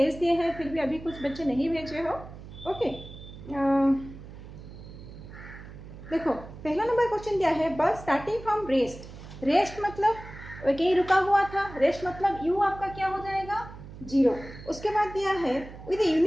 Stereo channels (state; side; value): noise; right; hum, 15 dB below the sound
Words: दिए हैं, फिर भी अभी कुछ बच्चे नहीं भेजे हो। ओके, देखो पहला नंबर क्वेश्चन दिया है, बस स्टार्टिंग फ्रॉम रेस्ट। रेस्ट मतलब कहीं रुका हुआ था, रेस्ट मतलब यू आपका क्या हो जाएगा, 0। उसके बाद दिया है with